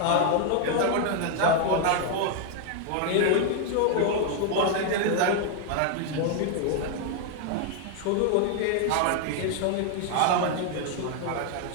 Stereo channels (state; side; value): different; both; correlation 0.00